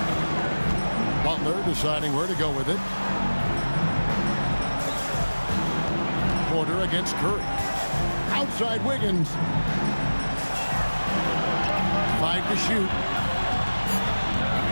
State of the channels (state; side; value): inverted; both; correlation -1.00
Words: Butler deciding where to go with it. Porter against Curry. Outside Wiggins. 5 to shoot.